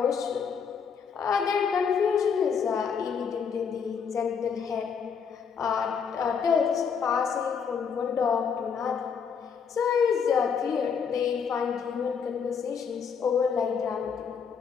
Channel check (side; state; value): right; quieter; 6.5 dB